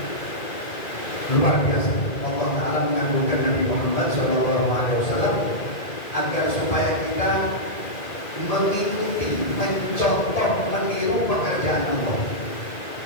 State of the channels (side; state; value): right; late; 1.9 ms